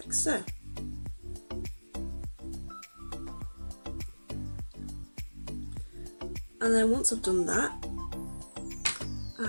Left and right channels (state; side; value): inverted; both; correlation -1.00